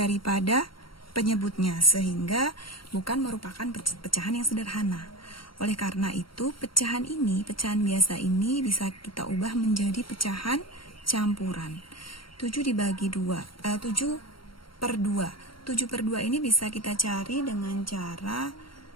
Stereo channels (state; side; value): late; right; 0.73 ms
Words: penyebutnya, sehingga bukan merupakan pecahan yang sederhana. Oleh karena itu, pecahan biasa ini bisa kita ubah menjadi pecahan campuran. 7/2. 7/2 ini bisa kita cari dengan cara